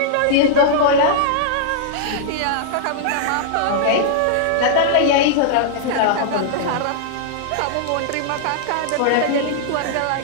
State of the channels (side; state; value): both; different; correlation -0.01